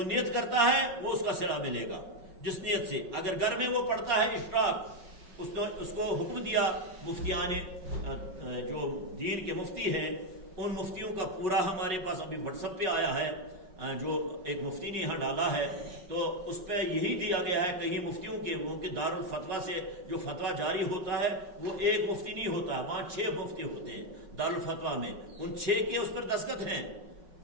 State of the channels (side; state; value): left; late; 5.4 ms